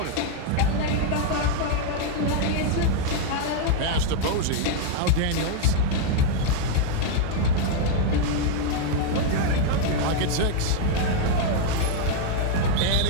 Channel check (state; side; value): different; both; correlation 0.00